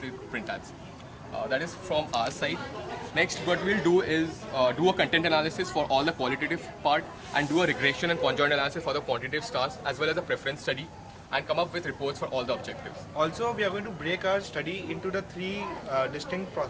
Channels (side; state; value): both; identical; correlation 1.00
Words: the print ads. That is from our side. Next, what we'll do is do a content analysis for all the qualitative part and do a regression and conjoint analysis for the quantitative stars as well as a preference study and come up with reports for all the objectives. Also, we are going to break our study into the three distinct